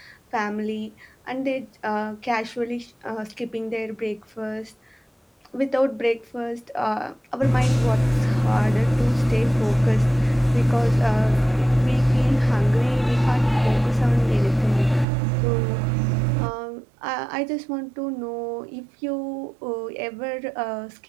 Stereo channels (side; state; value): left; drops out; at 15.1 s